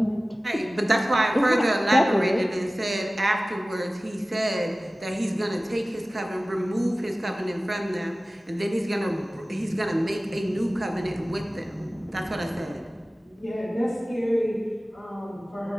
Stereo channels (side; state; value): both; normal; correlation 0.97